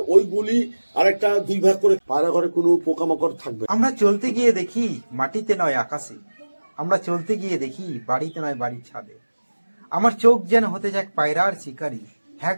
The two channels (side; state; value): both; inverted; correlation -1.00